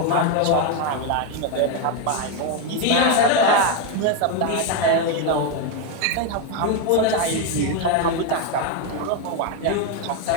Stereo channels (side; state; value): both; different; correlation 0.02